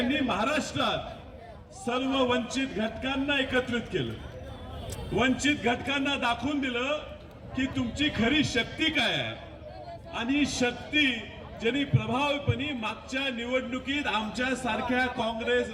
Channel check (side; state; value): both; identical; correlation 1.00